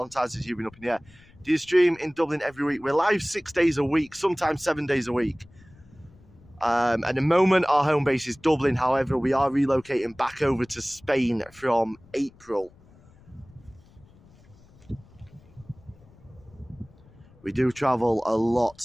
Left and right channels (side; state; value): left; noise; rumble, 26 dB below the sound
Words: time since you've been up in the air. Do you stream in Dublin every week? We're live 6 days a week, sometimes 7 days a week. At the moment, our home base is Dublin. However, we are relocating back over to Spain from April. We do travel a lot